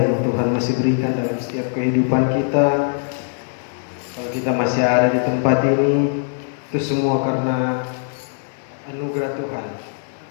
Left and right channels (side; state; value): right; silent; 65 dB below the other